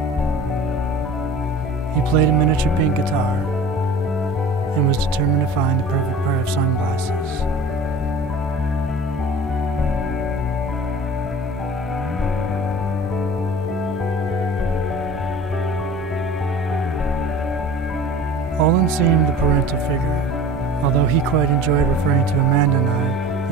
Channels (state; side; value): normal; both; correlation 0.41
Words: He played a miniature pink guitar and was determined to find the perfect pair of sunglasses. Olan seemed the parental figure, although he quite enjoyed referring to Amanda and I